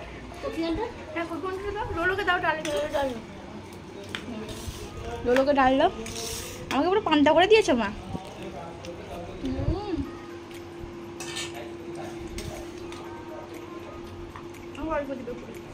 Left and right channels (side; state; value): both; identical; correlation 1.00